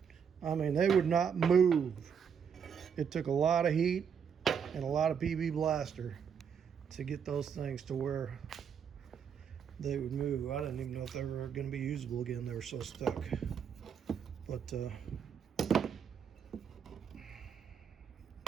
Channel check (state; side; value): quieter; left; 7.3 dB